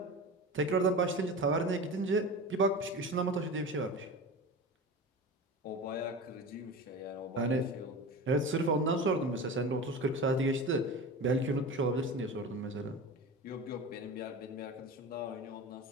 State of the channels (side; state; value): both; normal; correlation 0.30